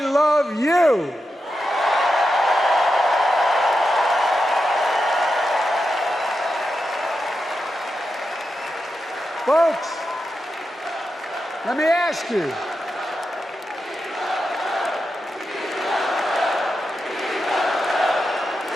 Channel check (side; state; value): both; normal; correlation 0.88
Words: you. Folks, let me ask you.